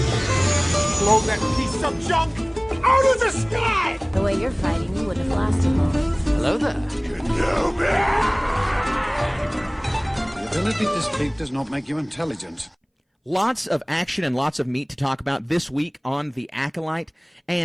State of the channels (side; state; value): both; identical; correlation 1.00